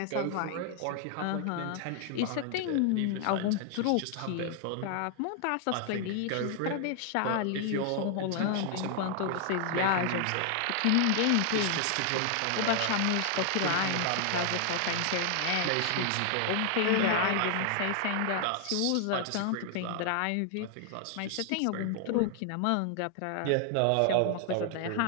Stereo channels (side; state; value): both; different; correlation 0.00